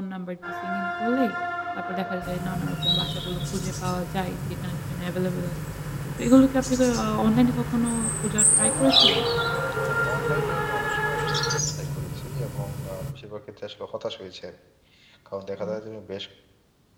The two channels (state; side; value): identical; both; correlation 1.00